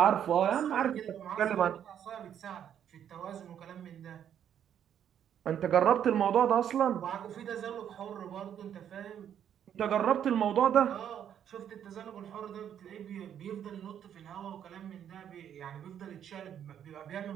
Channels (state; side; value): quieter; left; 9.4 dB